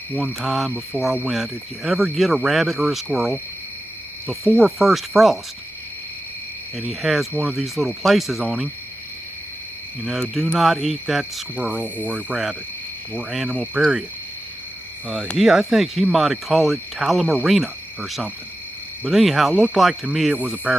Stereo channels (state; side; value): normal; both; correlation 0.92